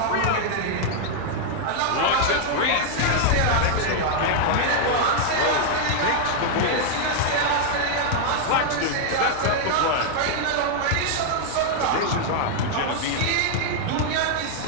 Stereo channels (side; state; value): both; different; correlation -0.01